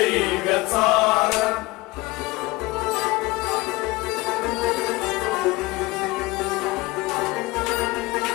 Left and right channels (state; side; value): quieter; right; 21.5 dB